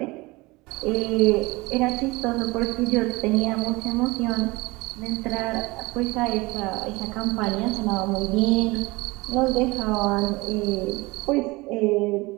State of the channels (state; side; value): quieter; left; 22.7 dB